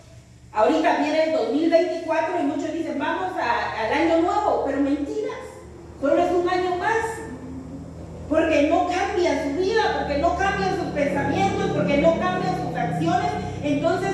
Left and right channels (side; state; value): both; identical; correlation 1.00